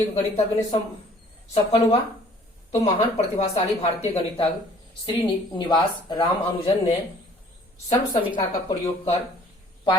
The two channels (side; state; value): both; normal; correlation 0.55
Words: गणितज्ञ ने सफल हुआ? तो महान प्रतिभाशाली भारतीय गणितज्ञ श्रीनिवास रामानुजन ने सर्वसमीका का प्रयोग कर